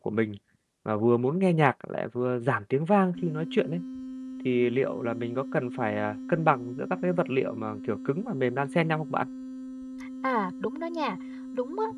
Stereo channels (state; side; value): identical; both; correlation 1.00